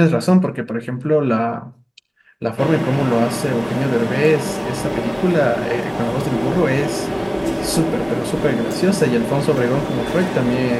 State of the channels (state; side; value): identical; both; correlation 1.00